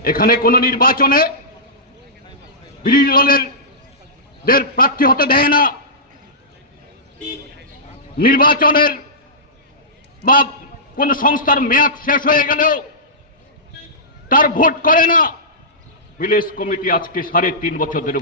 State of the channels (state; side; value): normal; both; correlation -0.17